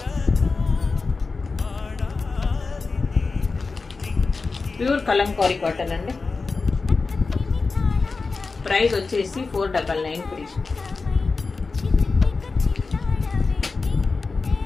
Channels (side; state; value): right; quieter; 4.2 dB